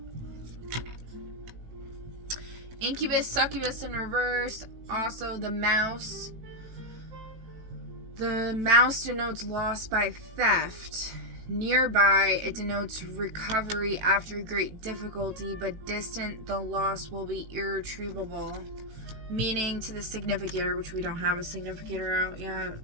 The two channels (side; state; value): left; late; 18 ms